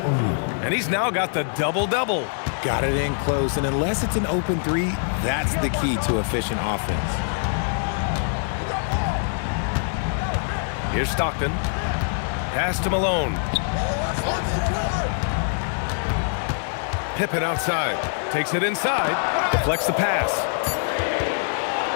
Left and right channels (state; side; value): silent; right; digital silence